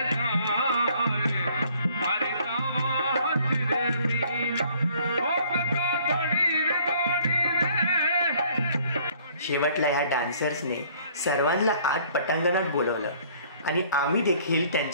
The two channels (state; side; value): inverted; both; correlation -0.58